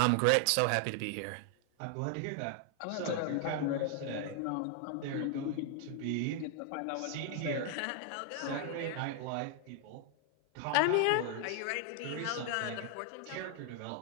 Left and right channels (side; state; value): both; different; correlation 0.00